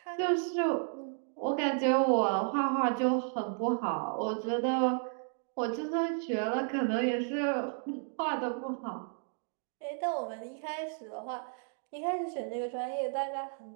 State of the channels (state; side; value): silent; left; 56 dB below the other